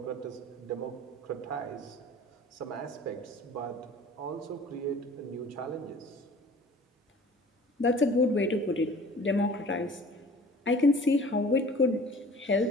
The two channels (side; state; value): both; normal; correlation 0.46